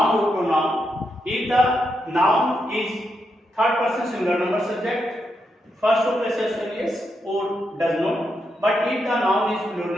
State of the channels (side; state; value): both; normal; correlation 0.83